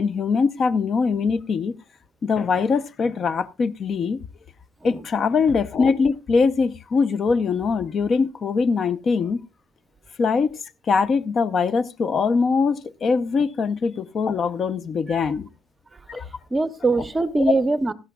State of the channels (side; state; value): right; quieter; 3.8 dB